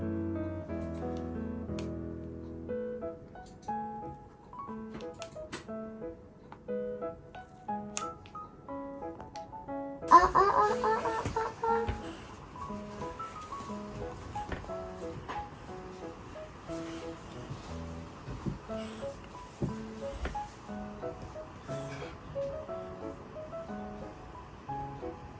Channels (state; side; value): identical; both; correlation 1.00